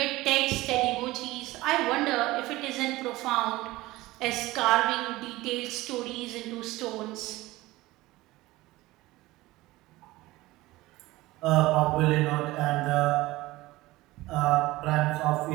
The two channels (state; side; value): quieter; left; 18.9 dB